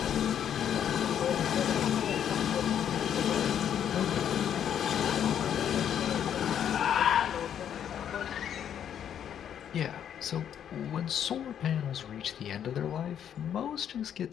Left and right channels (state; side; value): quieter; right; 9.3 dB